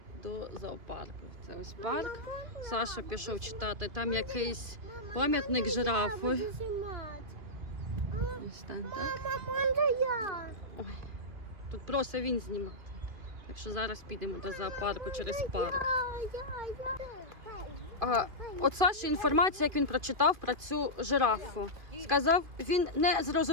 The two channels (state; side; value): late; left; 2.5 ms